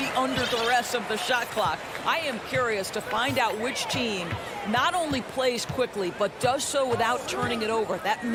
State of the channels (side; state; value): both; identical; correlation 1.00